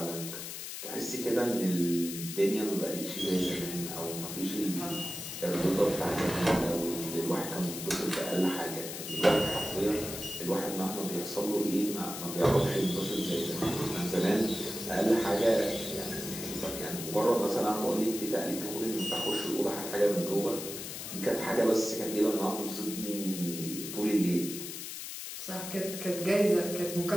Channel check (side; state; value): left; noise; hiss, 8 dB below the sound